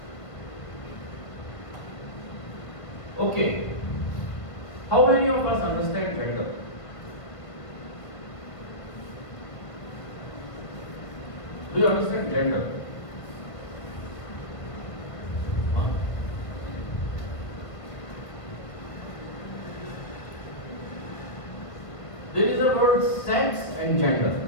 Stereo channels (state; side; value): late; right; 1.7 ms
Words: Okay, how many of us understand gender? Do you understand gender? Huh? There is a word sex and gender.